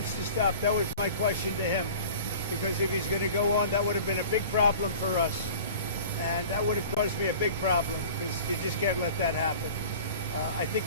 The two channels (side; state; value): both; inverted; correlation -0.42